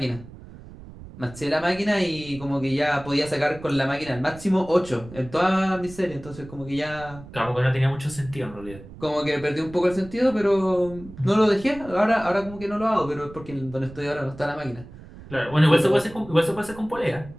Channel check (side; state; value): right; noise; rumble, 17 dB below the sound